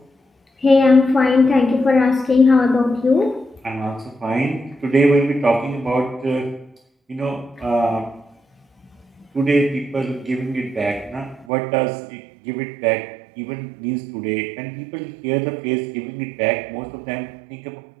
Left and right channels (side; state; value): left; drops out; at 11.5 s